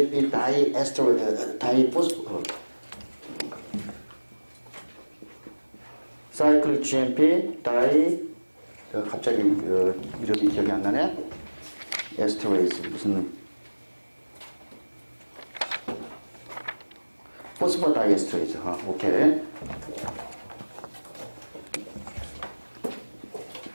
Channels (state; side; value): inverted; both; correlation -1.00